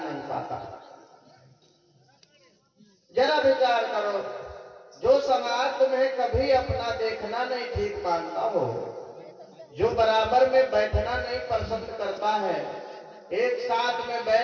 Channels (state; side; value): identical; both; correlation 1.00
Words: नहीं पाता। जरा विचार करो, जो समाज तुम्हें कभी अपना देखना नहीं ठीक मानता हो, जो बराबर में बैठना नहीं पसंद करता है, एक साथ में